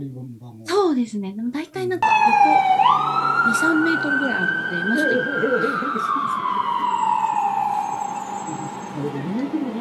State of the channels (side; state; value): both; identical; correlation 1.00